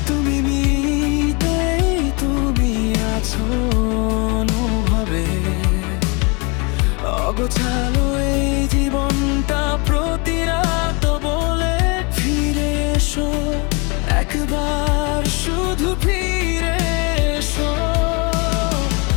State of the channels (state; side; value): quieter; right; 31.0 dB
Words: তুমি মিতেই তুমি আছো অনুভবে। অগোছালো এই জীবনটা প্রতি রাত বলে, ফিরে এসো একবার, শুধু ফিরে এসো।